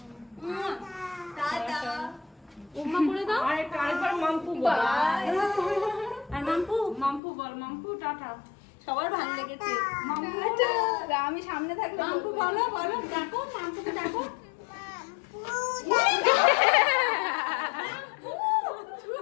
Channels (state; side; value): drops out; right; at 7.2 s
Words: ওমা করে দাও। আরেকবার মাম্পু বল। আর মাম্পু মাম্পু বল, মাম্পু টাটা। সবার ভালো লেগেছে। আমি সামনে থাকলে মাম্পু বলো বলো, ডাকো মাম্পুকে ডাকো।